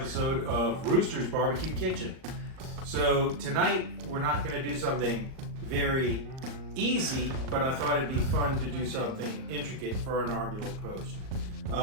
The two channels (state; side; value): late; left; 38 ms